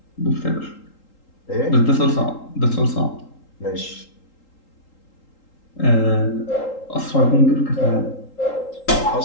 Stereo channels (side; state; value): right; late; 3.8 ms